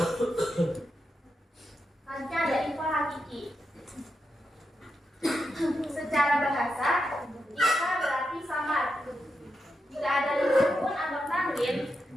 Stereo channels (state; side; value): normal; both; correlation 0.86